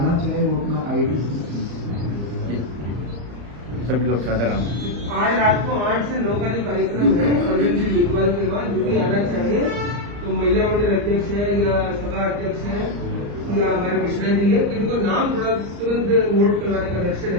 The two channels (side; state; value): left; late; 34 ms